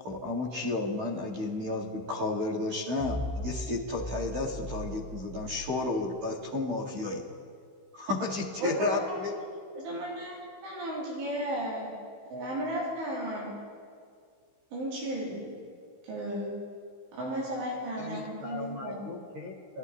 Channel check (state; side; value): late; left; 16 ms